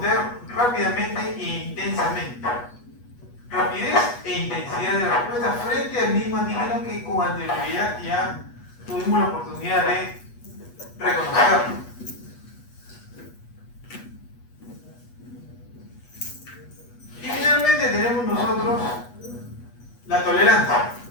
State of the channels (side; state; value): right; late; 8.3 ms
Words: rápidamente e intensamente. Rapidez e intensidad de respuesta frente al mismo antígeno que con anterioridad ya tuvimos la oportunidad de reconocerlo. Y finalmente tenemos nosotros la tolerancia.